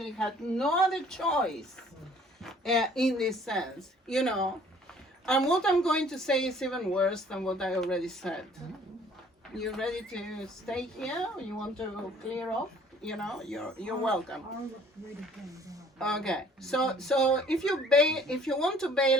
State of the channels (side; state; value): both; normal; correlation 0.55